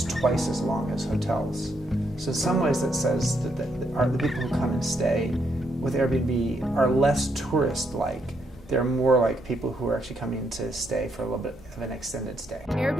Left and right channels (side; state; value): both; normal; correlation 0.76